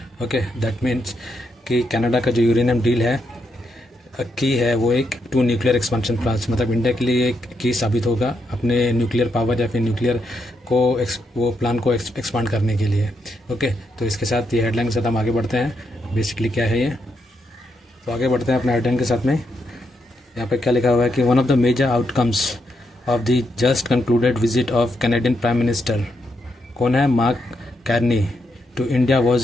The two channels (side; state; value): both; normal; correlation 0.81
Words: Okay, that means कि कनाडा का जो यूरेनियम डील है की है वो एक टू न्यूक्लियर एक्सपांशन प्लान्स, मतलब इंडिया के लिए एक की साबित होगा अपने न्यूक्लियर पावर या फिर न्यूक्लियर को वो प्लान को एक्सपांड करने के लिए। ओके, तो इसके साथ ये हेडलाइन के साथ हम आगे बढ़ते हैं। बेसिकली क्या है ये, तो आगे बढ़ते हैं अपने हेडलाइन के साथ में। यहाँ पे क्या लिखा हुआ है कि one of the major outcomes of the just concluded visit of Canadian prime minister, कौन है, Mark Carney, to India